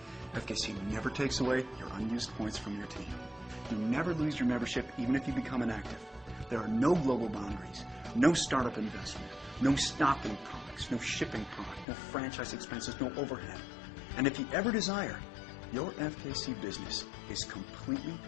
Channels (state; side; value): drops out; right; at 11.9 s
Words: FKC never takes away your unused points from your team. You never lose your membership even if you become inactive. There are no global boundaries, no startup investment, no stocking products, no shipping product, no franchise expenses, no overhead. And if you ever desire, your FKC business is completely